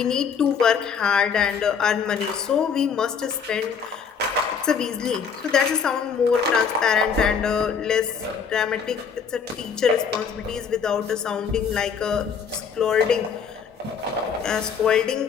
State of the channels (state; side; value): quieter; right; 6.5 dB